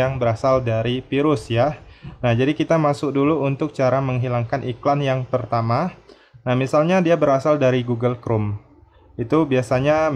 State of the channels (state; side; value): identical; both; correlation 1.00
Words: berasal dari virus ya. Nah, jadi kita masuk dulu untuk cara menghilangkan iklan yang pertama. Nah, misalnya dia berasal dari Google Chrome. Itu biasanya